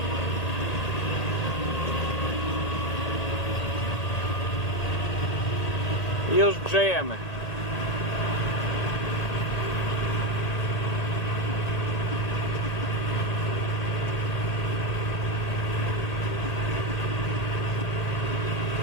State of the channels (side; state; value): right; late; 1.8 ms